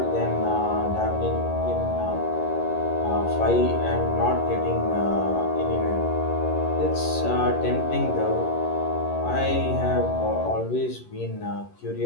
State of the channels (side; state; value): right; late; 11 ms